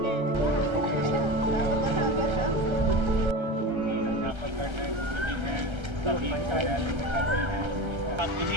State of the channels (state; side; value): late; left; 1.3 ms